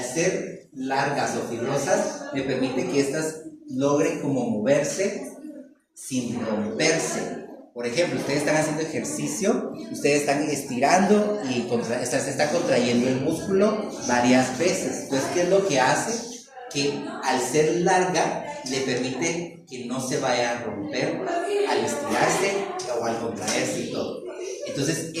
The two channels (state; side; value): identical; both; correlation 1.00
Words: ser largas o fibrosas, me permite que estas logren como moverse sin romperse. Por ejemplo, ustedes están haciendo ejercicio, ustedes están estirando y se está contrayendo el músculo varias veces. Entonces, ¿qué es lo que hace? Que al ser larga, le permite que no se vaya a romper al estirarse o al contraerse y todo. Entonces,